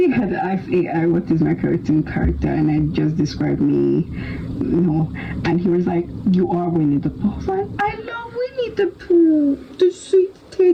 had to ask AI what is my cartoon character, and I just described me, and he was like, "You are Winnie the Pooh." I was like, "I love Winnie the Pooh, the sweet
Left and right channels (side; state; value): both; identical; correlation 1.00